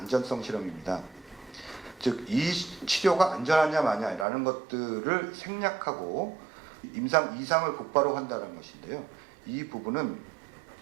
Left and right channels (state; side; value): drops out; left; at 4.2 s